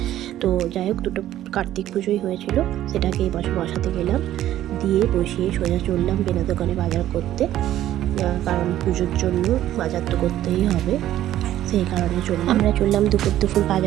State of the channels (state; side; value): quieter; left; 12.9 dB